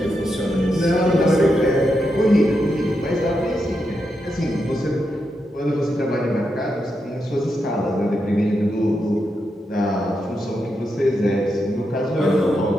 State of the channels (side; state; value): both; normal; correlation 0.85